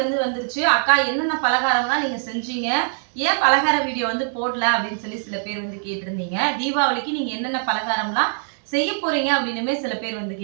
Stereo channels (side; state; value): left; silent; 64 dB below the other